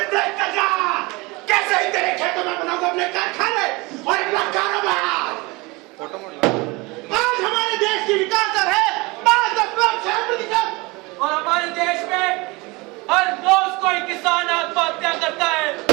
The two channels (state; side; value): quieter; left; 24.6 dB